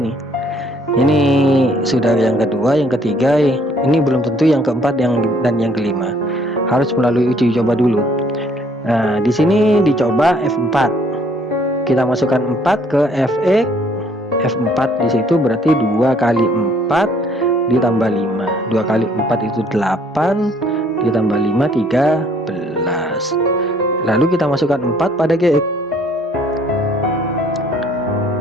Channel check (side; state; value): both; normal; correlation 0.62